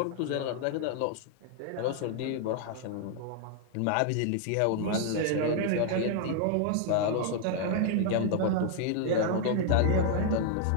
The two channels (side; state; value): both; different; correlation 0.00